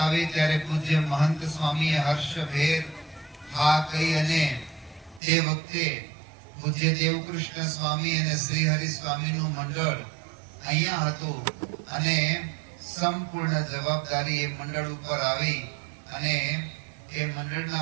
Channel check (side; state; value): left; drops out; at 5.2 s